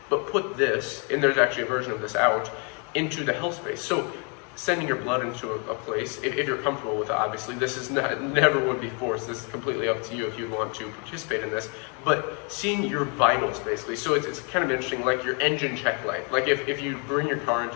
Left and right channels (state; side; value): quieter; right; 36.2 dB